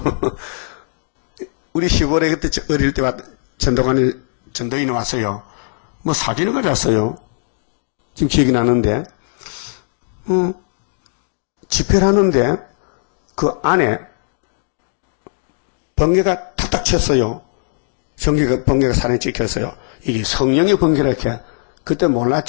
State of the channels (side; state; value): right; silent; digital silence